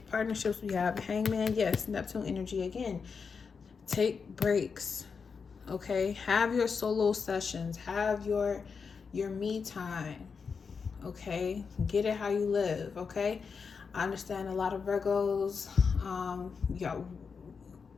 Partnerships, we have Hangman. Yes, Neptune energy again. Take breaks. Okay? Have your solo sessions. Have your me time. Okay? Get it how you live. Okay? I understand a lot of Virgos,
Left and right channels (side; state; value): right; quieter; 5.6 dB